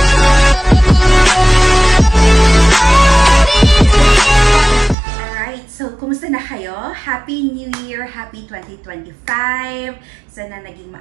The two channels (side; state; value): left; drops out; at 5.0 s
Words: Alright, so kumusta na kayo? Happy New Year! Happy 2025! Sana naging